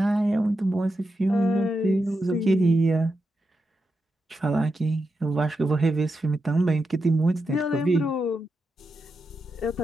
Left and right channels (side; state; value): both; normal; correlation 0.87